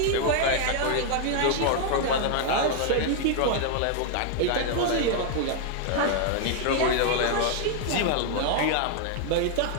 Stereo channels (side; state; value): both; different; correlation 0.00